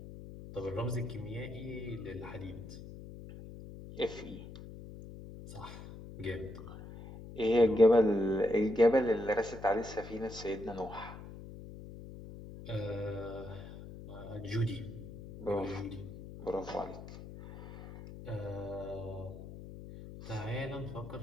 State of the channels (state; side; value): noise; left; hum, 13 dB below the sound